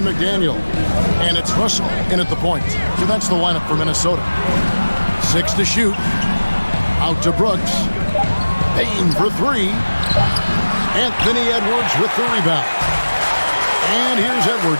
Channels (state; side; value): inverted; both; correlation -1.00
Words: McDaniel. And it's Russell in at the point. So that's the lineup for Minnesota. 6 to shoot. Out to Brooks. Bain for 3. Anthony Edwards with the rebound. And here's